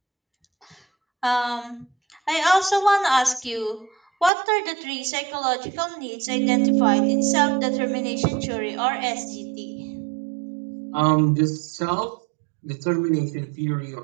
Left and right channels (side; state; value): left; drops out; at 4.3 s